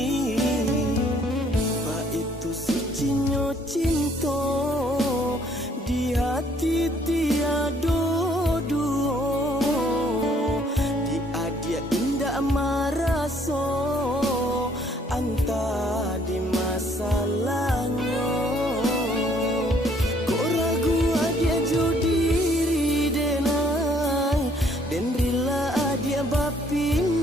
Ba itu sucinya cinta di hati tiada dua. Dia dia indah marasa anta di masalahnya. Kok ragu dia jodiri denai dan rela dia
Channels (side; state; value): both; normal; correlation 0.63